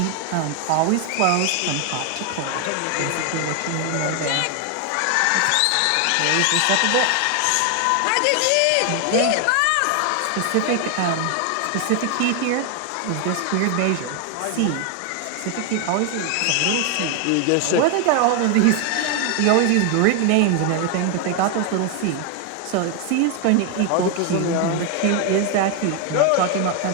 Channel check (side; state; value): both; different; correlation 0.01